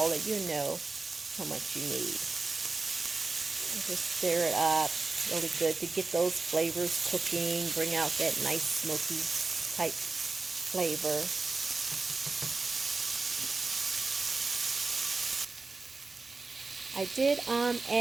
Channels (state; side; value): quieter; left; 3.8 dB